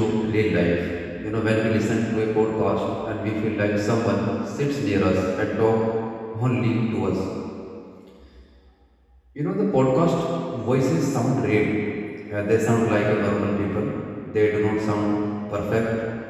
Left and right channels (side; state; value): both; identical; correlation 1.00